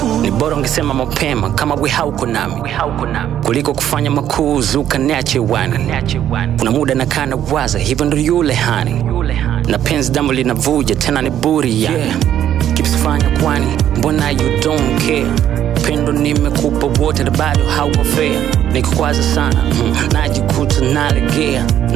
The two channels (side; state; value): left; quieter; 10.7 dB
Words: Ni bora ungesema mapema kama we hauko nami, kuliko kufanya makuzi ukaniache wani. Kuna muda nakaa nawaza, hivyo ndo yule hani, na penzi damu linavuja tena ni buri yani. Kipsifanya kwani mbona you don't care? Pendo nimekupa wote na bado hauko fair. Nikukwaza sana najikuta nalegea,